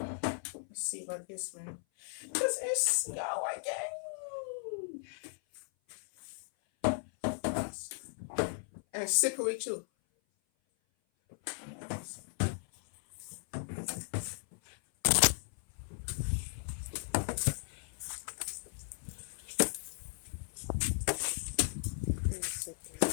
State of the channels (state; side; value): silent; right; 54 dB below the other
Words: see about this one. Cause it's snow again, and slippery too.